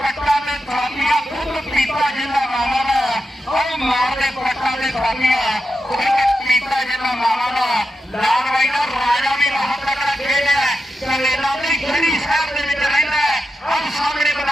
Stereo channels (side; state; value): both; normal; correlation 0.88